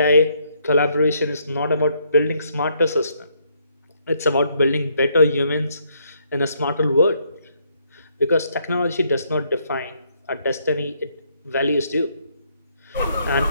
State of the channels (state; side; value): inverted; both; correlation -0.71